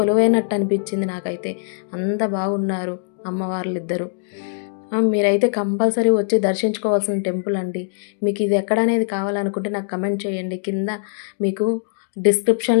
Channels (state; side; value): silent; right; digital silence